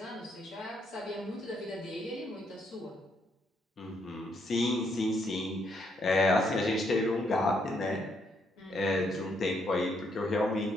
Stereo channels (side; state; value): both; normal; correlation 0.74